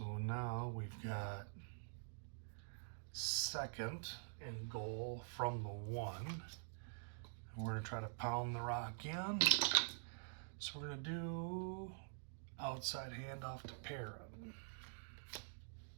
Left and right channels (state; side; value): silent; left; digital silence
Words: now we've got 2nd and goal from the 1. And we're going to try to pound the rock in. So we're going to do outside handoff to Perrin.